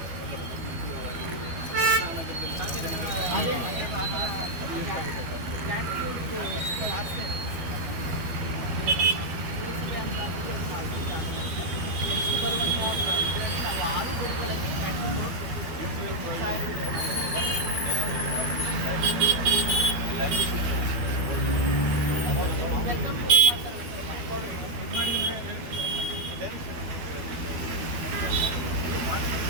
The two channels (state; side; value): late; left; 12 ms